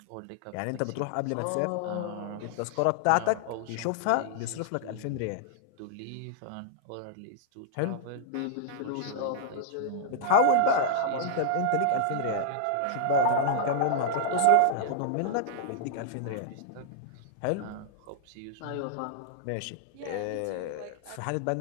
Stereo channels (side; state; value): both; different; correlation -0.01